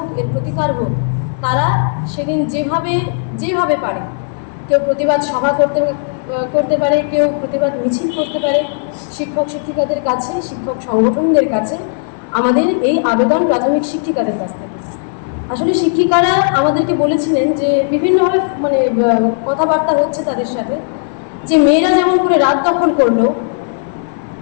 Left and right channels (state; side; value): silent; right; 67 dB below the other